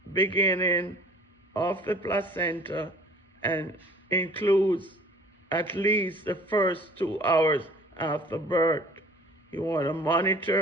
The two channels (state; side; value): normal; both; correlation 0.50